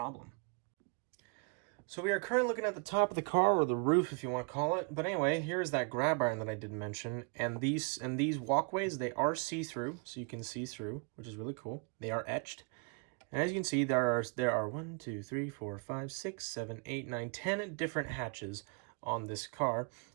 So we are currently looking at the top of the car, or the roof if you want to call it. But anyway, here is that grab iron that I did mention, and these walkways, they are see-through, so you can see through, which is really cool. They are etched. And as you can see, there are 1, 2, 3, 4, 5, 6, 7, 8, 9, 10 different hatches on this car,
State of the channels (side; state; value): left; quieter; 35.9 dB